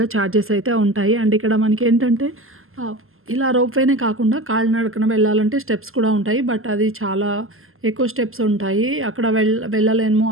చార్జెస్ అయితే ఉంటాయి. అండ్ ఇక్కడ మనకేంటంటే ఆహ్, ఇలా రోప్‌వేనే కాకుండా కాలినడకన వెళ్ళాలంటే స్టెప్స్ కూడా ఉంటాయి. బట్ అది చాలా ఎక్కువ స్టెప్స్ ఉంటాయి. అక్కడ వెళ్ళలేము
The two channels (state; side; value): late; left; 0.61 ms